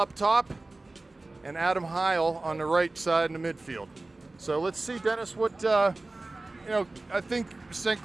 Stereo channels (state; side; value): quieter; left; 3.1 dB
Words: top, and Adam Heil on the right side in the midfield. So let's see, Dennis, what, I think St.